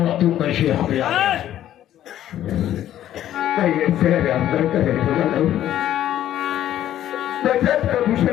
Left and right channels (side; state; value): right; quieter; 12.0 dB